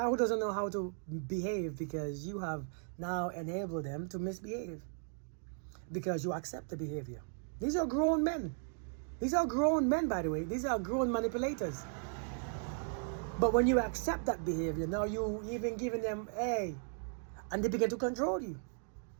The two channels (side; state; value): left; silent; 54 dB below the other